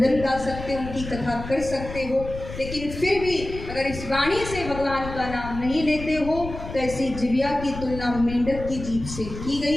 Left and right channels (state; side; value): noise; left; rumble, 10 dB below the sound